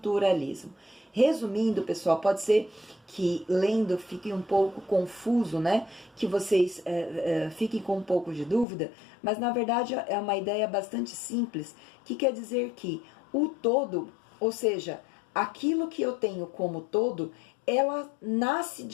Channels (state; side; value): drops out; right; at 8.7 s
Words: Resumindo, pessoal, pode ser que lendo fique um pouco confuso, né? Que vocês fiquem com um pouco de dúvida, mas na verdade é uma ideia bastante simples, que quer dizer que o todo, ou seja, aquilo que eu tenho como todo, ela nasce